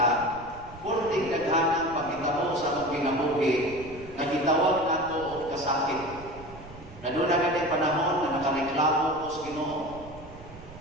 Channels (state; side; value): noise; right; rumble, 17 dB below the sound